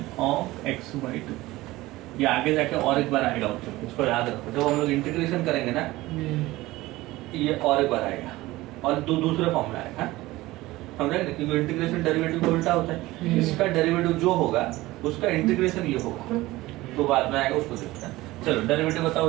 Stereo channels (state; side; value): quieter; left; 18.6 dB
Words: of x by 2। ये आगे जाके और एक बार आएगा बच्चों, इसको याद रखो। जब हम लोग इंटीग्रेशन करेंगे ना, ये और एक बार आएगा और दूसरे फॉर्म में आएगा, समझा? क्योंकि इंटीग्रेशन डेरिवेटिव को उल्टा होता है। इसका डेरिवेटिव जो होगा उसका इंटीग्रेशन ये होगा, तो बाद में आएगा, उसको देखते हैं। चलो डेरिवेटिव बताओ